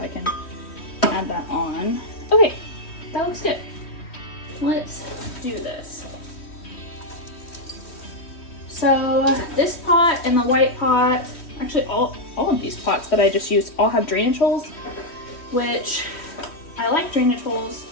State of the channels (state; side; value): late; right; 3.1 ms